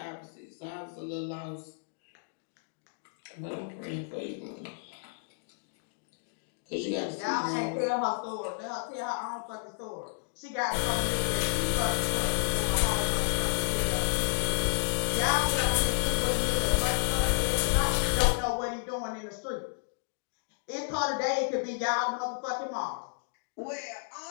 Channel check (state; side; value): silent; right; digital silence